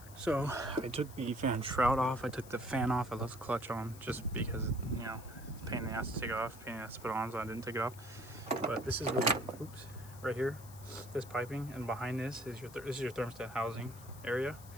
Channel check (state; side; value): noise; left; hiss, 19 dB below the sound